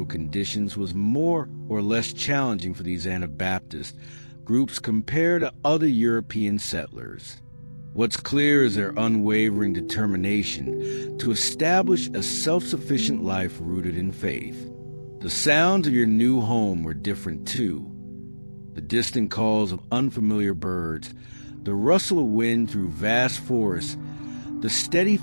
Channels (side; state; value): both; inverted; correlation -1.00